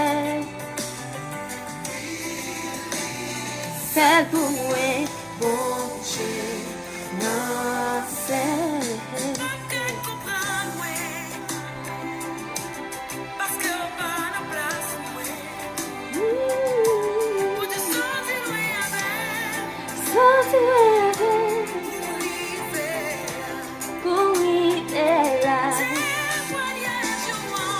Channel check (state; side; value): identical; both; correlation 1.00